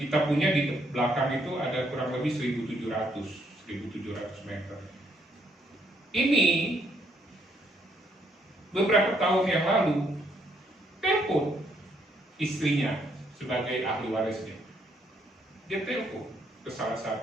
kita punya di belakang itu ada kurang lebih 1.700 meter. Ini beberapa tahun yang lalu telepon istrinya sebagai ahli warisnya. Dia telepon ke salah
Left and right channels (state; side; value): normal; both; correlation 0.71